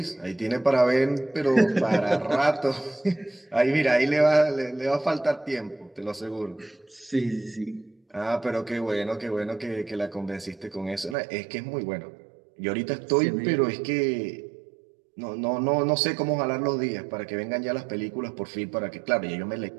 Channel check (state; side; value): drops out; left; at 11.2 s